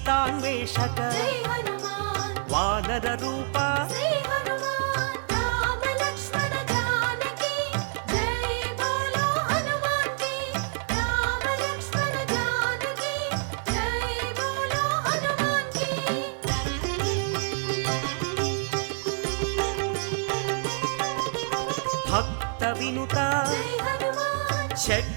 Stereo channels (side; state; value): left; silent; digital silence